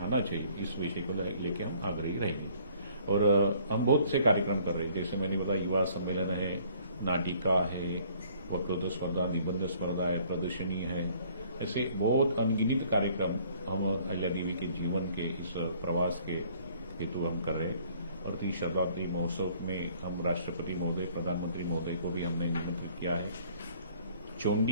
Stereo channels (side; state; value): both; inverted; correlation -0.58